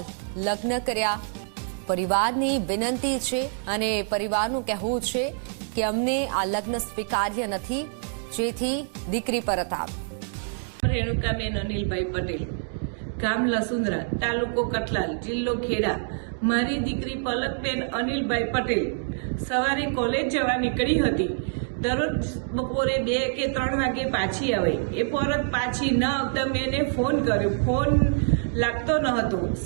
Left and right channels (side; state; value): left; silent; digital silence